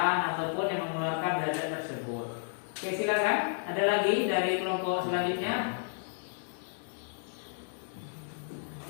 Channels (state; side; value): silent; right; digital silence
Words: ataupun yang mengeluarkan zat tersebut. Oke, silakan. Ada lagi dari kelompok selanjutnya?